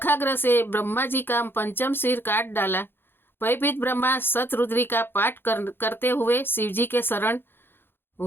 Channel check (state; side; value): late; right; 0.10 ms